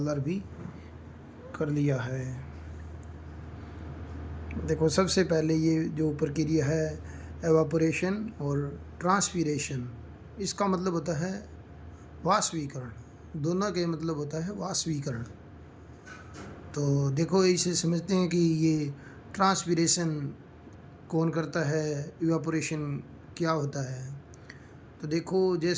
भी कर लिया है। देखो, सबसे पहले ये जो प्रक्रिया है एवापोरेशन और ट्रांसपीरेशन, इसका मतलब होता है वाष्पीकरण। दोनों के मतलब होता है वाष्पीकरण। तो देखो, इसे समझते हैं कि ये ट्रांसपीरेशन कौन करता है, इवापोरेशन क्या होता है। तो देखो,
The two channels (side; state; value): both; identical; correlation 1.00